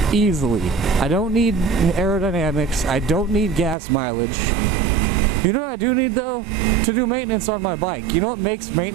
easily. I don't need aerodynamics. I don't need gas mileage. You know what I do need though? To do maintenance on my bike. You know what makes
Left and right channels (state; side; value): drops out; left; at 3.8 s